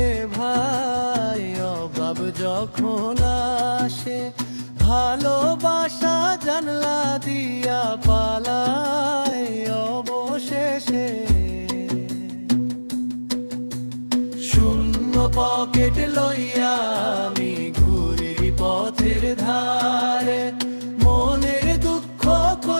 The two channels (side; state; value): both; inverted; correlation -1.00